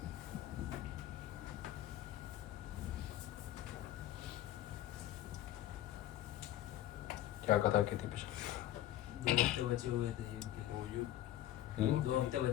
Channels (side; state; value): right; quieter; 13.3 dB